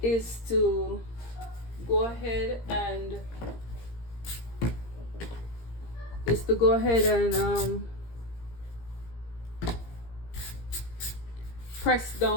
to go ahead and press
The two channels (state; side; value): late; right; 17 ms